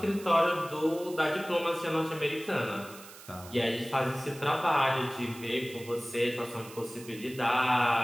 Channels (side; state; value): right; noise; hiss, 18 dB below the sound